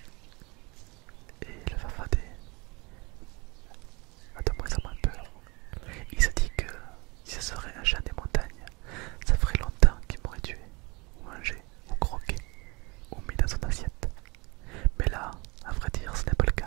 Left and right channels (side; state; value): left; quieter; 26.8 dB